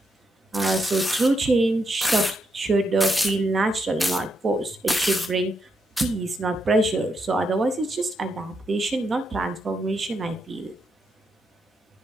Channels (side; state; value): both; normal; correlation 0.81